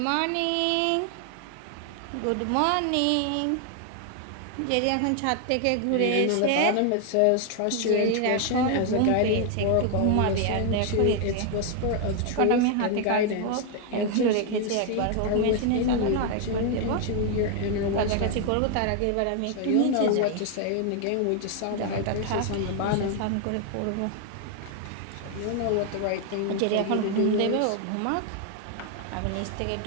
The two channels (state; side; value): different; both; correlation 0.00